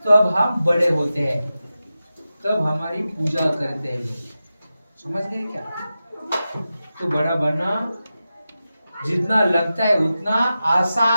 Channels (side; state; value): both; inverted; correlation -0.93